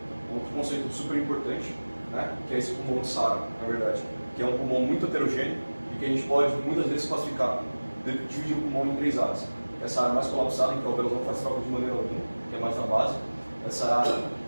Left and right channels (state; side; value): inverted; both; correlation -1.00